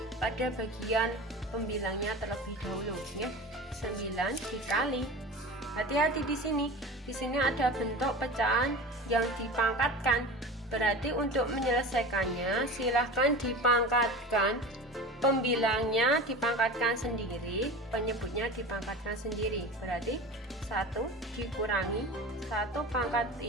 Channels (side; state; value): both; normal; correlation 0.33